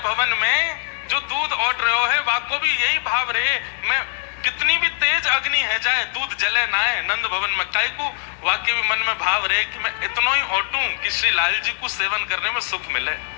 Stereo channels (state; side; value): silent; right; digital silence